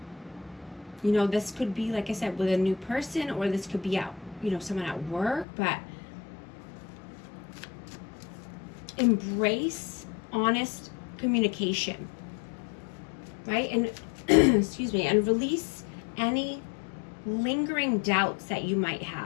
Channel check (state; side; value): drops out; right; at 5.5 s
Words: You know, this could be, like I said, with a new person, or this could be out, you know, someone at work, but embrace honest communication, right? And excuse me, and release any lingering doubts that you might